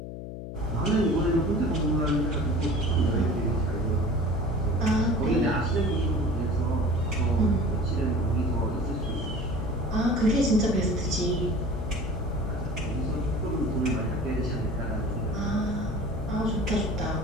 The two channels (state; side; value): noise; left; hum, 9 dB below the sound